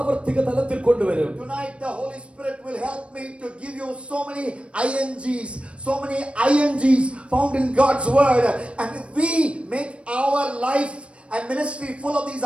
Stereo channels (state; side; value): late; left; 0.060 ms